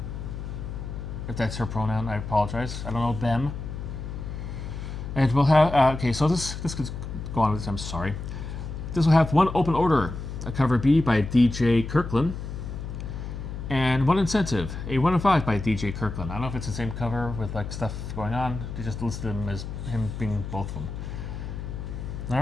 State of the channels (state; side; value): noise; left; hum, 7 dB below the sound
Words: If that's her pronoun, I apologize. I don't know them. And we'll have, okay, so this could go on with this, I'm sorry. This will have one open order, a cover B by DJ Kirkland, and one incentive, a 1 in 5 by DJ Kirkland. I don't know if it's the same cover with like stuff going on. They just listed him as him being both of them. All